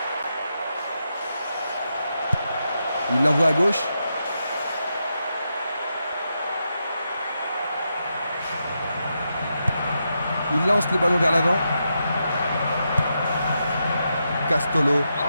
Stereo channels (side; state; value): both; inverted; correlation -0.85